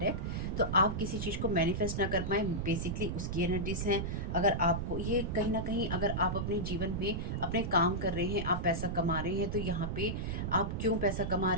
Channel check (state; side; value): noise; right; rumble, 2 dB below the sound